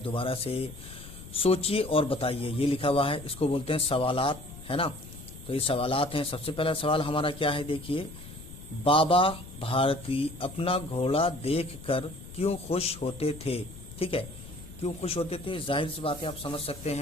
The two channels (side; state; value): left; noise; rumble, 15 dB below the sound